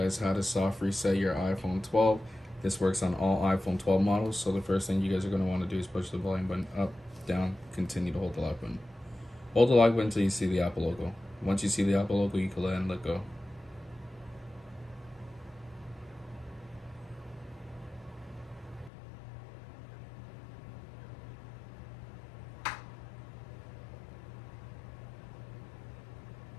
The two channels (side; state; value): right; drops out; at 18.9 s